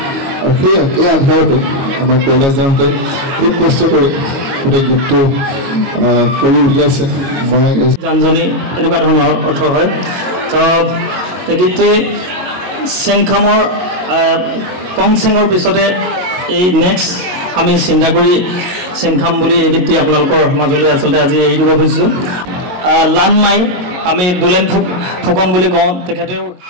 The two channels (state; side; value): late; left; 22 ms